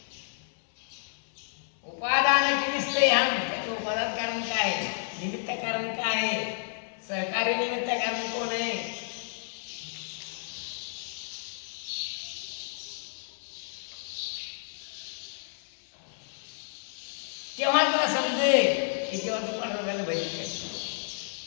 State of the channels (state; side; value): silent; right; 58 dB below the other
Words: उपादान दिसते हम त्याचं उपादान कारण काय? निमित्त कारण काय? सहकारी निमित्त कारण कोण आहे? तेव्हा तुला समजेल की जेव्हा तू पांडुरंगाला भजन करतो